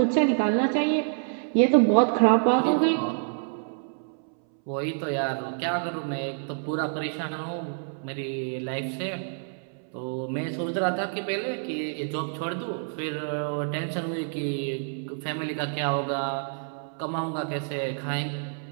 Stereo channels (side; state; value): left; silent; 60 dB below the other